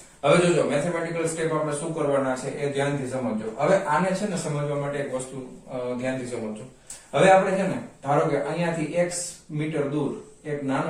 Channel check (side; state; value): both; identical; correlation 1.00